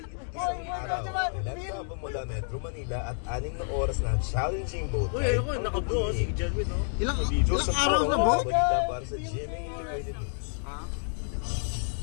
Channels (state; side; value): silent; right; digital silence